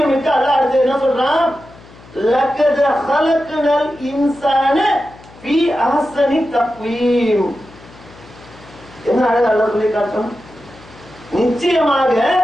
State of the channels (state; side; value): noise; left; hum, 23 dB below the sound